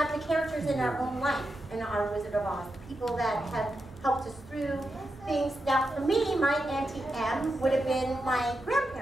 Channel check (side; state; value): both; normal; correlation 0.87